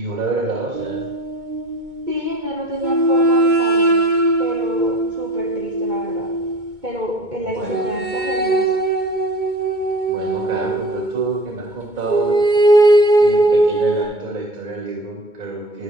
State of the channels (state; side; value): late; left; 2.2 ms